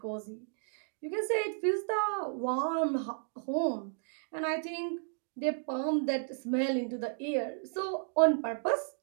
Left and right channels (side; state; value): left; silent; digital silence